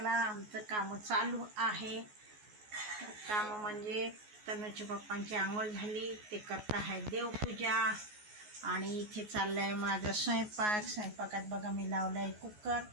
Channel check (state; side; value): late; left; 14 ms